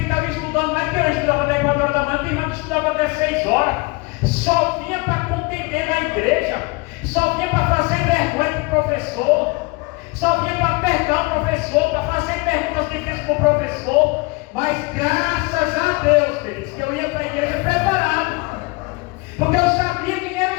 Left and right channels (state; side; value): quieter; right; 25.7 dB